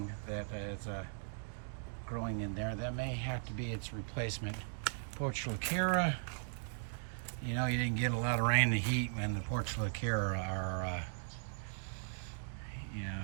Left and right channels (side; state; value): left; silent; digital silence